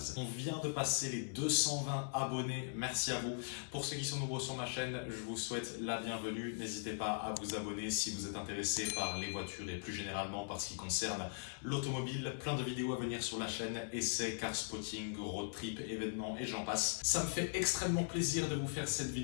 On vient de passer les 220 abonnés, merci à vous. Pour ceux qui sont nouveaux sur ma chaîne, je vous souhaite la bienvenue. N'hésitez pas à vous abonner si vous êtes intéressé par les voitures et plus généralement par ce qui concerne l'automobile. Plein de vidéos à venir sur la chaîne, essais, car spotting, road trip, événements et j'en passe. Ça me fait extrêmement plaisir de vous faire cette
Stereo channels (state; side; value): silent; right; digital silence